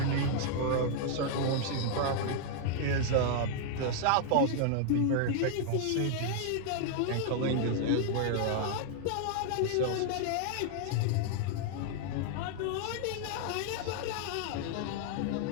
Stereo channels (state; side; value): different; both; correlation 0.00